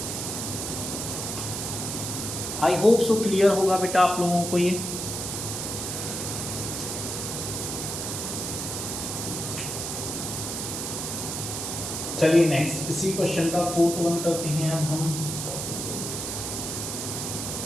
आई होप सो क्लियर होगा बेटा आप लोगों को ये। चलिए नेक्स्ट इसी क्वेश्चन का 4th वन करते हैं अब हम।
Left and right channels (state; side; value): noise; right; hiss, 4 dB below the sound